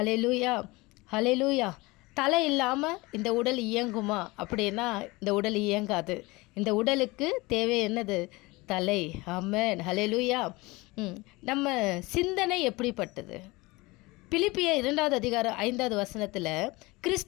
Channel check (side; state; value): right; quieter; 22.8 dB